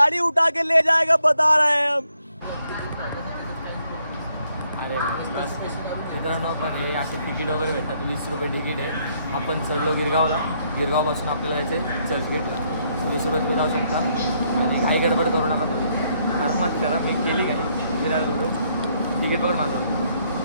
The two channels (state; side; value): inverted; both; correlation -0.72